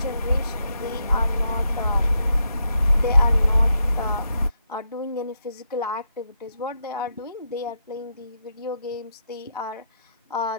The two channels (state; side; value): inverted; both; correlation -0.81